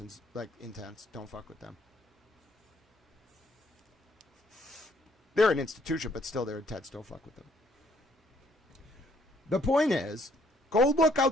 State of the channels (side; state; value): both; normal; correlation 0.66